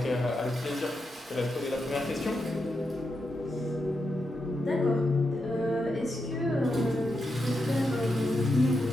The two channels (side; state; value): both; normal; correlation 0.86